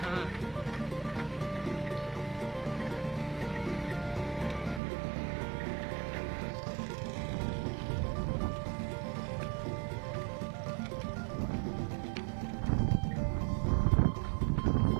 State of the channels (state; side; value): drops out; left; at 4.8 s